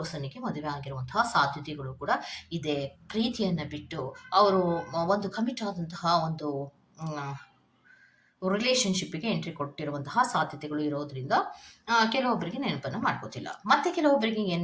ಮದುವೆ ಆಗಿರುವಂತಹ ಸಾಧ್ಯತೆಗಳು ಕೂಡ ಇದೆ. ಪ್ರೀತಿಯನ್ನ ಬಿಟ್ಟು ಅವರು ಒಂದು ಕಮಿಟ್ ಆದಂತಹ ಒಂದು ರಿಲೇಶನ್‌ಶಿಪ್‌ಗೆ ಎಂಟ್ರಿ ಕೊಟ್ಟಿರುವಂತಹ ಸಾಧ್ಯತೆಗಳು ಇರೋದ್ರಿಂದ ಕೆಲವೊಬ್ಬರಿಗೆ ನೆನಪನ್ನ ಮಾಡ್ಕೋತಿಲ್ಲ. ಮತ್ತೆ ಕೆಲವೊಬ್ಬರಿಗೆ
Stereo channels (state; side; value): identical; both; correlation 1.00